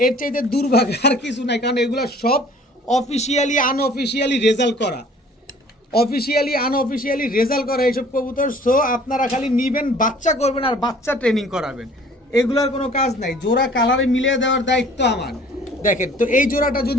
এর চাইতে দুর্ভাগ্য আর কিছু নাই, কারণ এগুলো সব অফিসিয়ালি আনঅফিসিয়ালি রেজাল্ট করা, অফিসিয়ালি আনঅফিসিয়ালি রেজাল্ট করা এইসব কবুতর। সো আপনারা খালি নিবেন, বাচ্চা করবেন আর বাচ্চা ট্রেনিং করাবেন, এগুলোর কোনো কাজ নাই। জোড়া কালারে মিলিয়ে দেওয়ার দায়িত্ব আমার। দেখেন তো এই জোড়াটা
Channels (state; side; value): normal; both; correlation 0.52